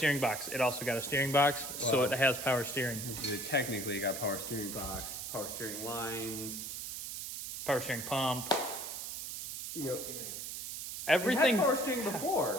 box. It also got a steering box, so it has power steering. Technically, you got power steering box, power steering lines, Power steering pump. Yep. Everything. It had power steering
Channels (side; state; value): right; noise; hiss, 6 dB below the sound